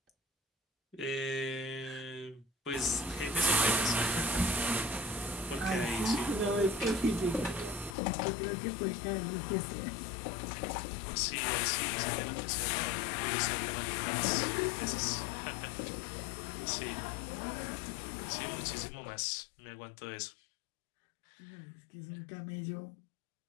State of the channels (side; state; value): right; drops out; at 8.0 s